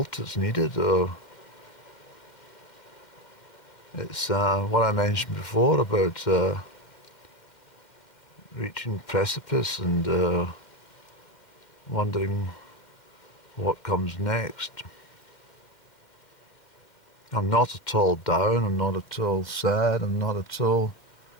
that's needed, or it's what I mentioned before about reaching precipice and wondering what comes next. I'm not at all down, I'm not at all sad, I'm not at all...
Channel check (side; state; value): right; late; 2.1 ms